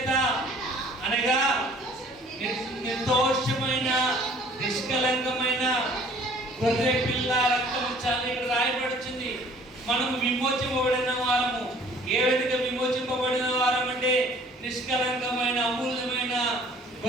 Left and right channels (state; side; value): normal; both; correlation 0.53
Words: అనగా నిర్దోషమైన నిష్కలంకమైన గొర్రె పిల్ల రక్తము చాలా ఇక్కడ రాయబడుతుంది. మనము విమోచింపబడిన వారము. ఏ విధంగా విమోచింపబడిన వారం అంటే నిష్కలంకమైన అమూల్యమైన